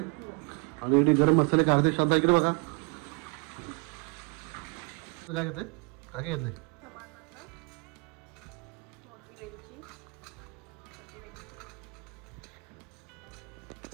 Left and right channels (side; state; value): left; quieter; 31.2 dB